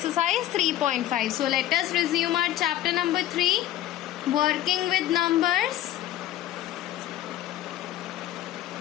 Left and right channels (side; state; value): right; quieter; 13.4 dB